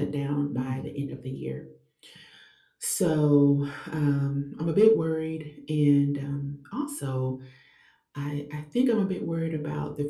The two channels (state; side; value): identical; both; correlation 1.00